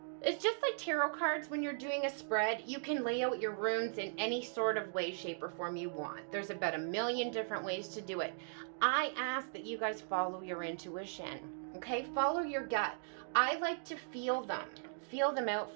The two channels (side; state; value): left; silent; digital silence